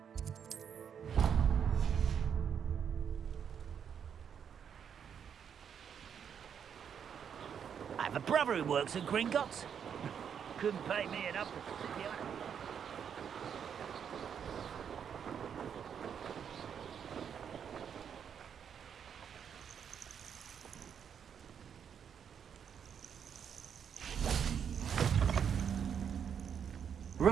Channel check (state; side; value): quieter; left; 7.8 dB